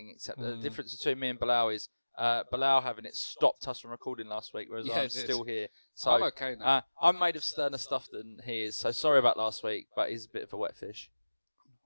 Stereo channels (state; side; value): inverted; both; correlation -1.00